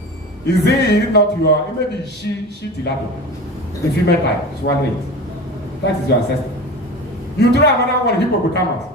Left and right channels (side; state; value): both; normal; correlation 0.32